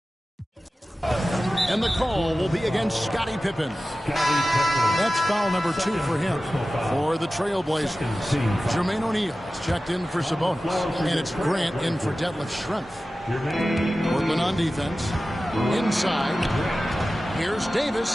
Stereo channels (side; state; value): both; normal; correlation 0.95